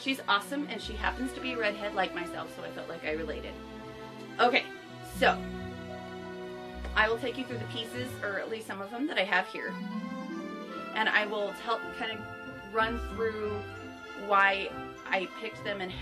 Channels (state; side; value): identical; both; correlation 1.00